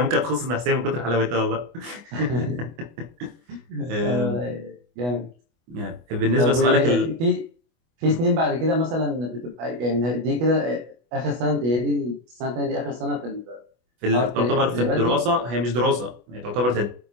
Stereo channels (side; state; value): left; late; 25 ms